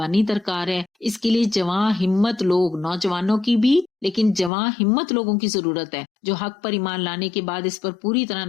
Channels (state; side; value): drops out; right; at 4.5 s